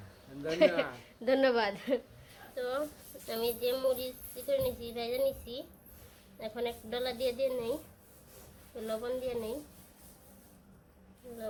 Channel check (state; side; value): identical; both; correlation 1.00